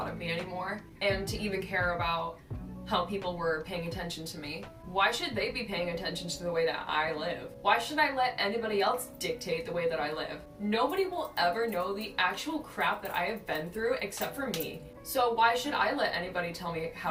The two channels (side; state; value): both; identical; correlation 1.00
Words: of me anymore, and to even care about how people were paying attention to me. Why should they be paying attention to the way that I live? Why should I let anybody else dictate the way that I live? Nobody will ever know the actual crap that I have been through except for me. So why should I let anybody tell me how